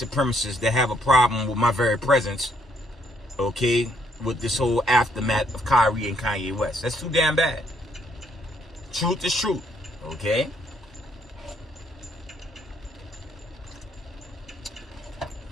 that have a problem with my very presence, okay, with this whole aftermath of Kyrie and Kanye West. That's too damn bad. Truth is truth, okay?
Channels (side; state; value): both; normal; correlation 0.71